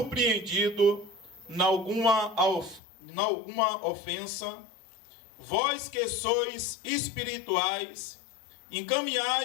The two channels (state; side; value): drops out; right; at 2.8 s